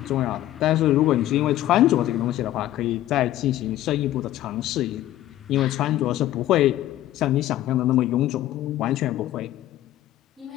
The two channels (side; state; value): right; quieter; 13.9 dB